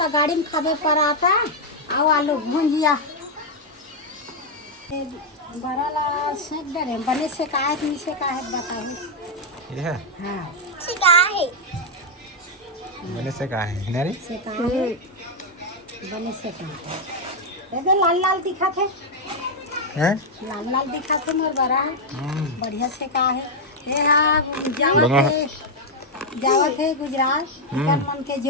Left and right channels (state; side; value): normal; both; correlation 0.00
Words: गाड़ी में खाबे पराठा आओ आलू भुंजिया बड़ा ला सेक डरे बने से का है नहीं से का है बताओ ये है हाँ से का है मैंने से कहा है नारी से का है बने से का है ये लाल लाल दिखा थे हैं लाल लाल दिखा थे मोर बड़ा बढ़िया से का है ये हाँ जावा थे गुजरात इधर मन के